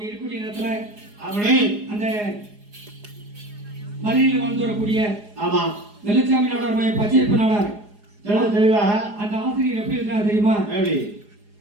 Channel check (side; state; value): left; late; 4.8 ms